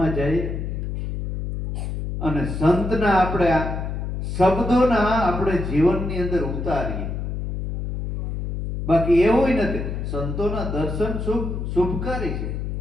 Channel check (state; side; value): noise; left; hum, 4 dB below the sound